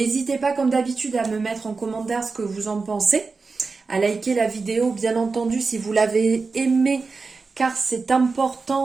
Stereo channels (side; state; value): left; quieter; 4.3 dB